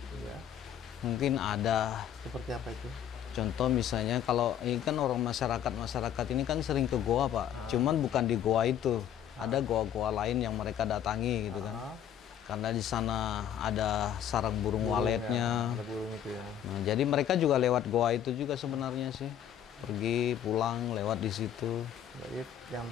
Ya, mungkin ada. seperti apa itu? Contoh misalnya kalau ini kan orang masyarakat ini kan sering ke goa Pak, cuman bukan di goa itu, ada goa-goa lain yang mereka datangi gitu kan. Karena di sana ada sarang burung waletnya. Ada burung itu ya. Nah, jadi mereka juga lewat goa itu juga sebenarnya sih. Pergi pulang lewat di situ. Jadi yang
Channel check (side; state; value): right; quieter; 9.8 dB